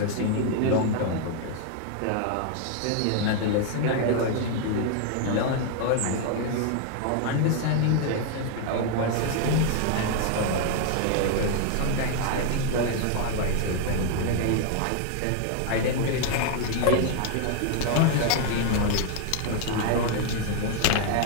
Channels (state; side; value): different; both; correlation 0.00